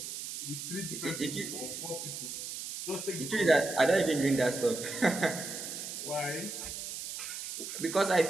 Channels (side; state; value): right; noise; hiss, 7 dB below the sound